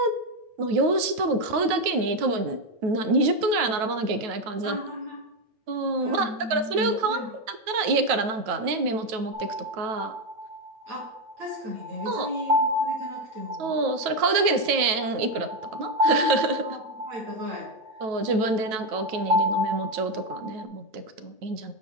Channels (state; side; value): late; left; 9.2 ms